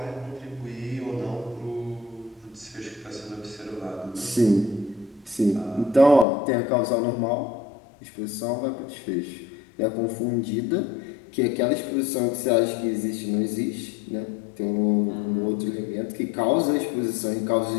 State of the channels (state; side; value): drops out; right; at 6.2 s